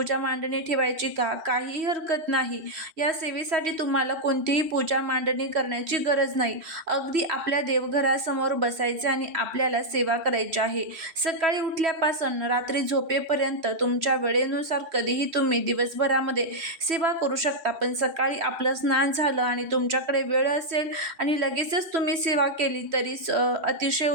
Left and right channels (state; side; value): late; left; 3.1 ms